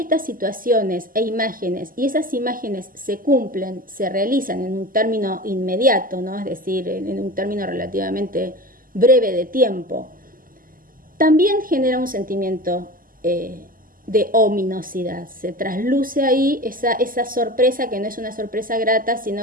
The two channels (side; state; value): left; late; 0.41 ms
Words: situaciones e imágenes, y esas imágenes se cumplen, se realizan en un término inmediato, ¿no? Es decir, en un término relativamente breve de tiempo, también genera un sentimiento de ominosidad. Se trasluce ahí esa sorpresa, que no es una sorpresa grata,